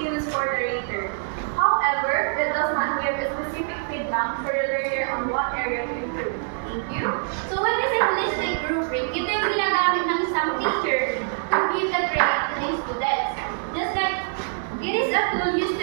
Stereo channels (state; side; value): silent; left; digital silence